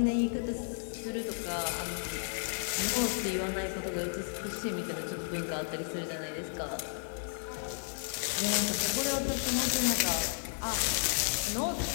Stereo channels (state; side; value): silent; right; 56 dB below the other